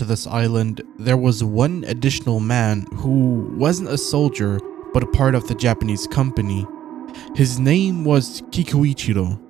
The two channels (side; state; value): left; quieter; 11.6 dB